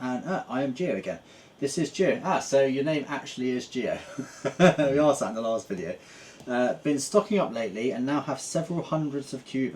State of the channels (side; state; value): both; identical; correlation 1.00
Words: And I am Gio again. This is Gio. So your name actually is Gio. We asked that in the last video. Been stocking up lately and now have several hundreds of